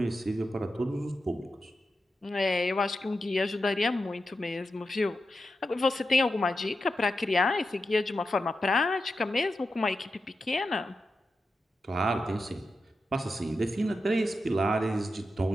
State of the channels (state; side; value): normal; both; correlation 0.89